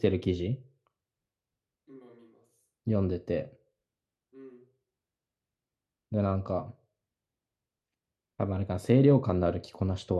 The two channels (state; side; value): identical; both; correlation 1.00